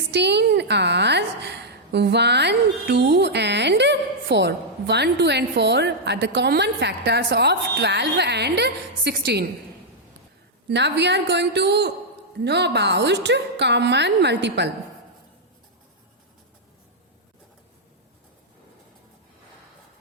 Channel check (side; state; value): both; normal; correlation -0.05